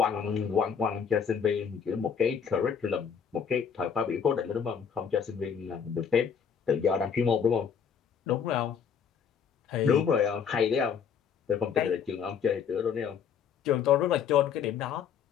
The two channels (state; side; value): quieter; right; 7.2 dB